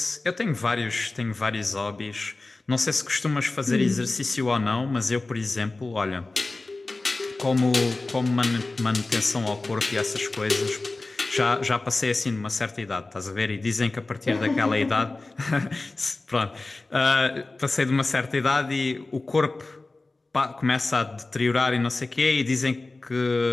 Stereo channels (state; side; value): quieter; right; 3.2 dB